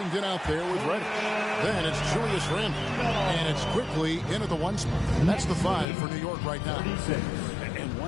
out there with Reddish. Then it's Julius Randle. And it's quickly into the 1 spot. That's the 5 for New York right now. And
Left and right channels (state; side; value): drops out; right; at 5.9 s